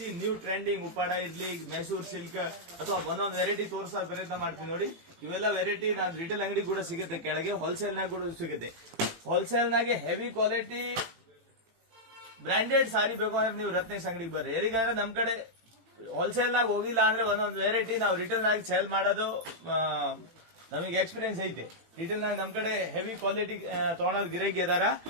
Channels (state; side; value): late; left; 18 ms